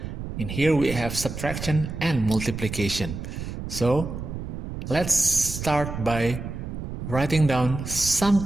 In here we have subtraction and multiplication. So let's start by writing down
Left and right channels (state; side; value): noise; right; rumble, 7 dB below the sound